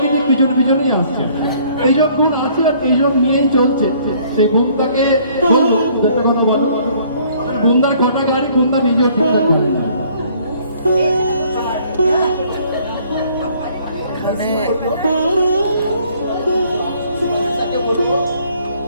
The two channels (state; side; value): inverted; both; correlation -0.60